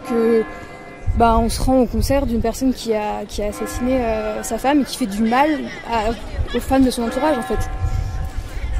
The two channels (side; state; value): both; identical; correlation 1.00